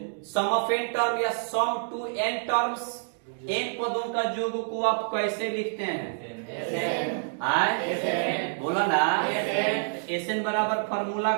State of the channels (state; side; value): silent; left; digital silence